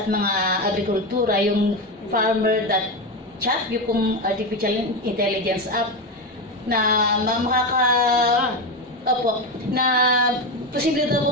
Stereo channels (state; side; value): normal; both; correlation 0.15